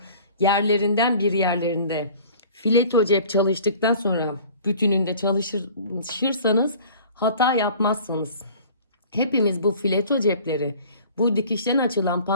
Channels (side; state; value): both; inverted; correlation -0.47